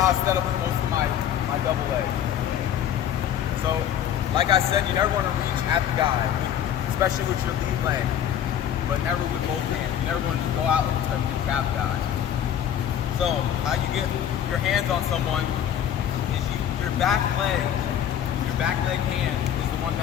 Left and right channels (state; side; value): quieter; right; 9.9 dB